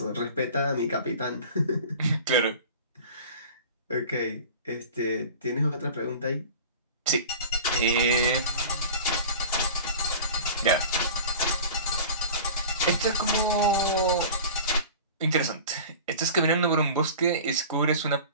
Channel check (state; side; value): inverted; both; correlation -0.38